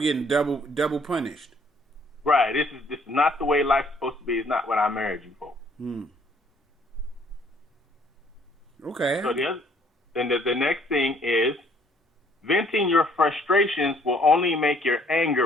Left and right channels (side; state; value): both; normal; correlation 0.62